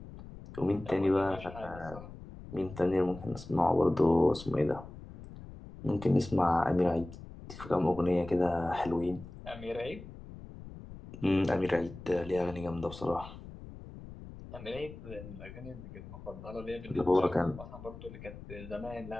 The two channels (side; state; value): left; noise; rumble, 14 dB below the sound